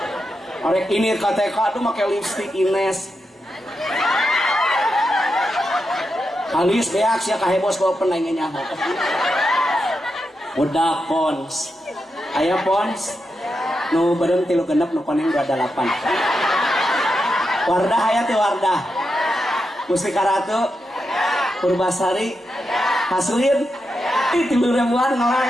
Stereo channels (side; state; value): both; normal; correlation 0.87